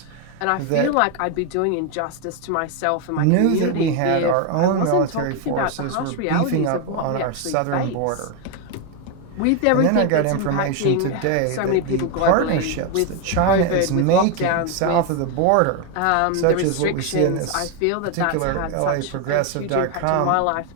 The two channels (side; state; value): both; different; correlation 0.01